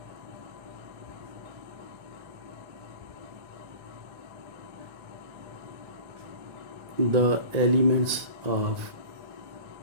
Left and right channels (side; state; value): left; late; 1.9 ms